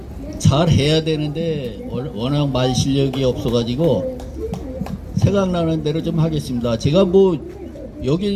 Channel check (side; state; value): both; identical; correlation 1.00